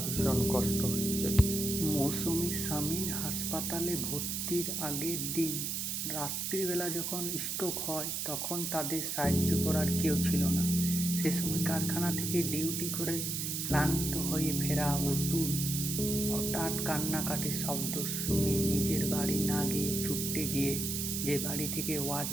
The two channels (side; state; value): right; noise; hiss, 2 dB below the sound